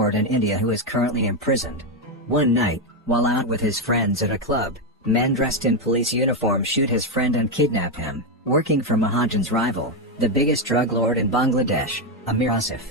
in India who is currently imprisoned. One night, while out with his friends at a club, men dressed in police uniform shoot his friend and kidnap him, working for Mahajan's rival, the biggest drug lord in Bangladesh, Amir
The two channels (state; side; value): normal; both; correlation 0.06